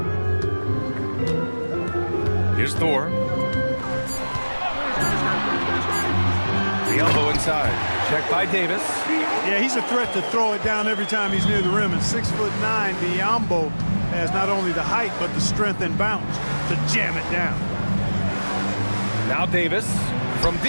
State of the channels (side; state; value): both; inverted; correlation -1.00